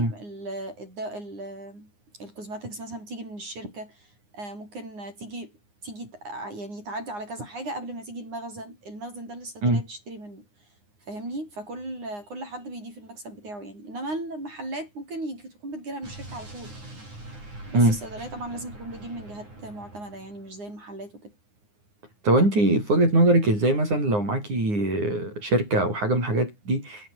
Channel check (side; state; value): left; late; 9.7 ms